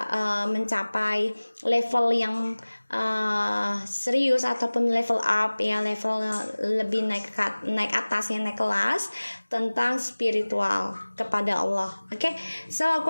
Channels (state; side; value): inverted; both; correlation -1.00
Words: mencapai level yang serius ataupun level up ya, level lebih naik atas ya, naik kelas tentang spiritual kepada Allah. Oke, so aku